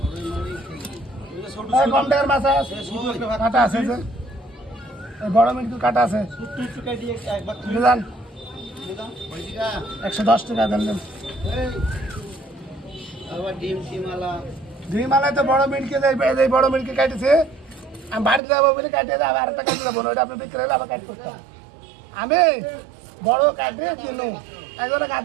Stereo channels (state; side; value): drops out; left; at 18.4 s